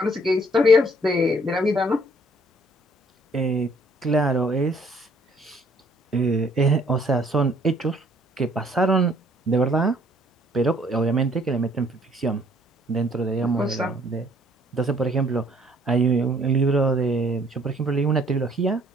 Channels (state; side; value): normal; both; correlation 0.61